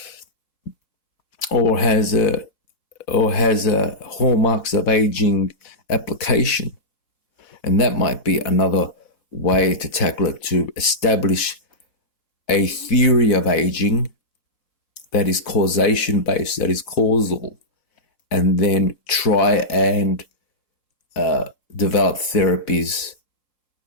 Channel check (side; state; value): right; late; 4.1 ms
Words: or has a hallmarks of aging application, and that might be another way to tackle it, to establish a theory of aging that is causation based, that is causal, and then try and develop therapies